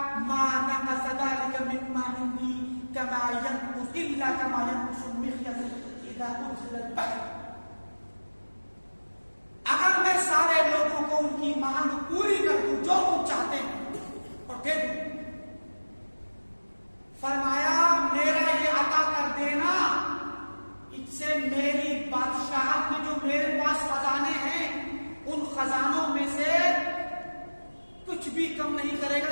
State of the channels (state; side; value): inverted; both; correlation -1.00